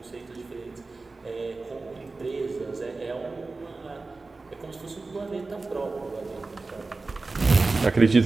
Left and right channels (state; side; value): quieter; left; 3.6 dB